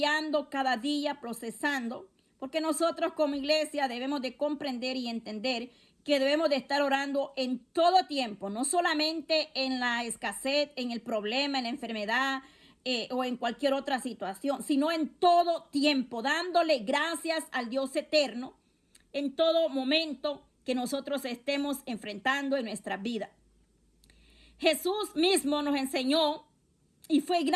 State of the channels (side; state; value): both; identical; correlation 1.00